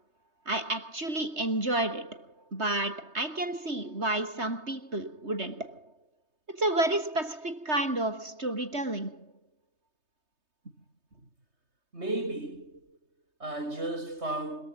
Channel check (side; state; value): left; late; 3.2 ms